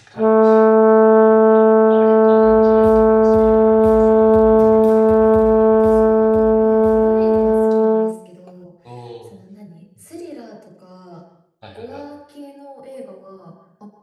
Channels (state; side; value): identical; both; correlation 1.00